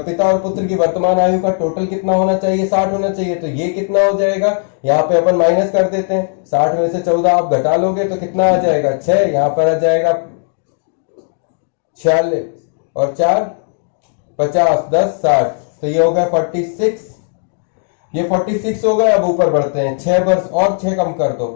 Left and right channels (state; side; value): silent; right; digital silence